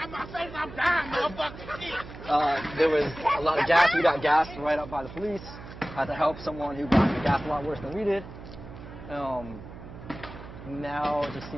my face. I'm dying, motherfucker. There was a lot of gas. We got gassed right up by the police. Had to help someone who got gassed a lot worse than we did. Now it just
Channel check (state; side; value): noise; right; hum, 14 dB below the sound